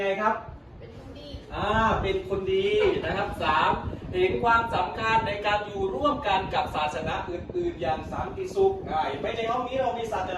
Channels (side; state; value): both; identical; correlation 1.00